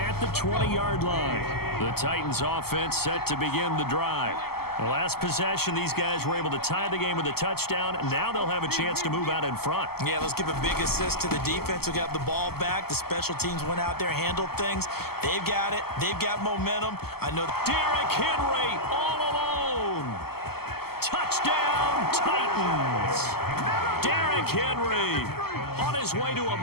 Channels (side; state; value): right; late; 0.95 ms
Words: the 20-yard line. The Titans offense set to begin the drive. The last possession, these guys were able to tie the game with a touchdown, and now they'll have a chance to move out in front. Yeah, let's give a big assist to the defense who got the ball back. The special teams went out there, handled things. They've got it. They've got momentum. I know. Derrick Henry all alone. Touchdown, Titans. Derrick Henry on his way to a